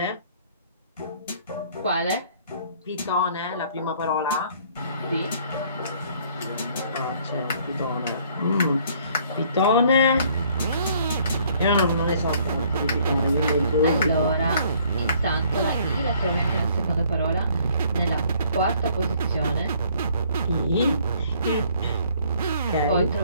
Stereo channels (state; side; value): inverted; both; correlation -0.61